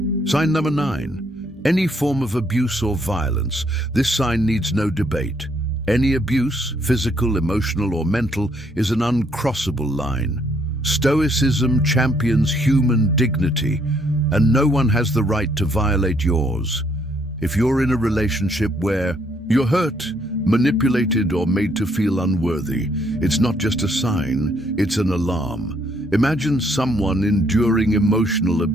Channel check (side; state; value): both; normal; correlation 0.69